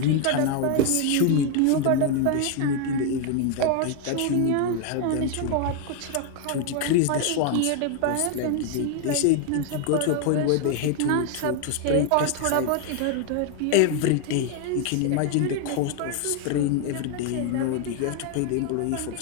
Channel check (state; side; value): different; both; correlation 0.01